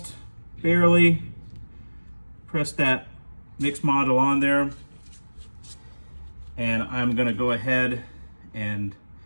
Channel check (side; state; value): both; inverted; correlation -1.00